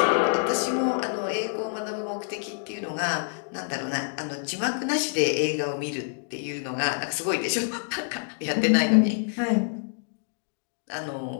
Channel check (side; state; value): right; silent; digital silence